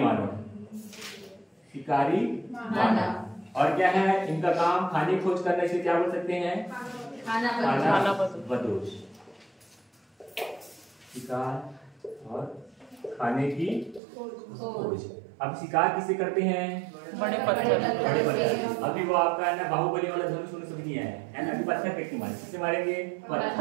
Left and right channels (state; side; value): drops out; left; at 14.0 s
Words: मानव, शिकारी मानव। और क्या है इनका काम? खाने की खोज करना। इसे क्या बोल सकते हैं? खाना बदोश। शिकार और खाने की खोज। अब शिकार किससे करते हैं? बड़े पत्थर। अभी वो आपका है ना बाहुबली वाला धनुष समझ नहीं आया है ना। अभी पत्थर फेंक के मारे, किससे मारेंगे?